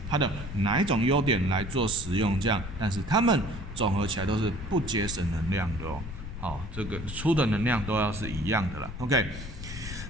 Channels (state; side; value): noise; left; rumble, 9 dB below the sound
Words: 它的哪一种优点来做使用，这样，但是它们总合起来都是不节省能量的哦。好，这个出的能量都要是一样的啦。OK，